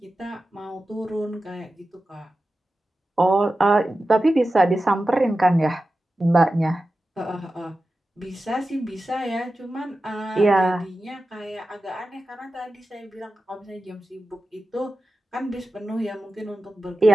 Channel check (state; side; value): normal; both; correlation 0.93